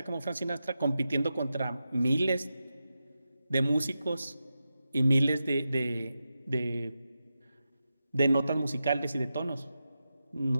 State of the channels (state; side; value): inverted; both; correlation -0.90